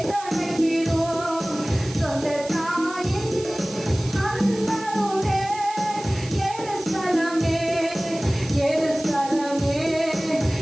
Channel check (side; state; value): right; noise; hiss, 15 dB below the sound